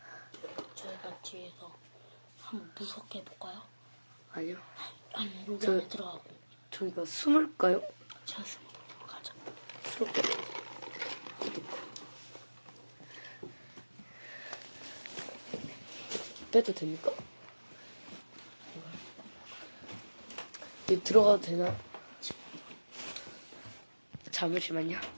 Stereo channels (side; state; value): both; inverted; correlation -1.00